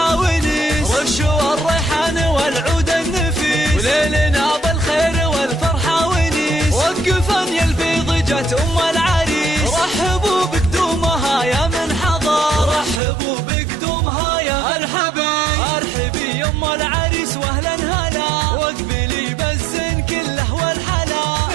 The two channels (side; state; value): left; drops out; at 13.0 s